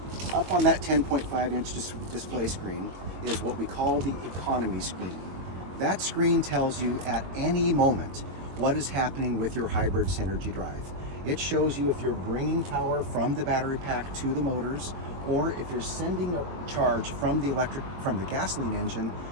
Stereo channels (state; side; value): late; left; 22 ms